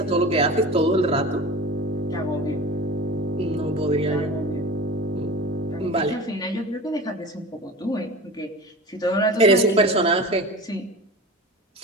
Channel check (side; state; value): both; normal; correlation 0.33